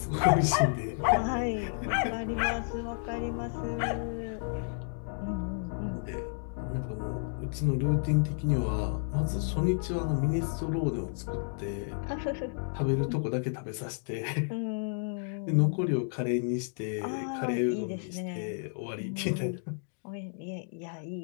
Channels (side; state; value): right; silent; digital silence